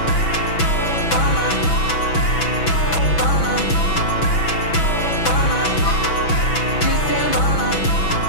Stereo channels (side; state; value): right; late; 6.1 ms